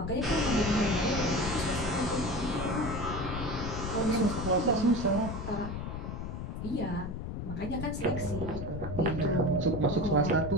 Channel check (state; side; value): noise; left; rumble, 5 dB below the sound